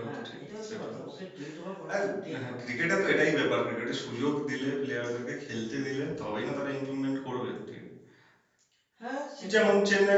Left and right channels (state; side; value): identical; both; correlation 1.00